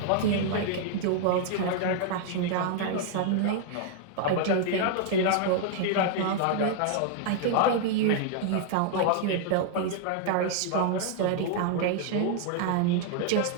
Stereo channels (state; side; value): different; both; correlation 0.00